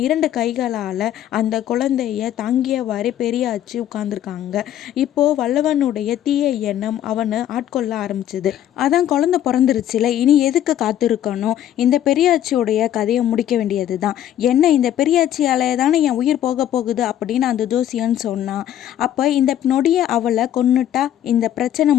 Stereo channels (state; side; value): quieter; right; 11.3 dB